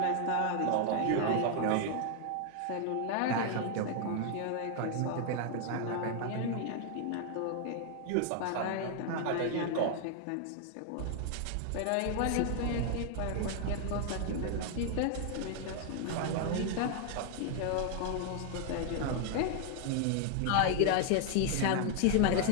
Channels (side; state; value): both; different; correlation 0.00